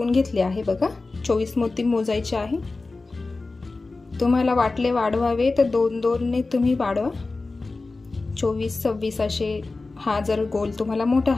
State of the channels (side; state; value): right; quieter; 3.6 dB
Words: घेतले आहे। बघा, 24 मोती मोजायचे आहे। तुम्हाला वाटले वाढवावे तर 2-2 ने तुम्ही वाढवा, 24-26 असे। हा जर गोल तुम्हाला मोठा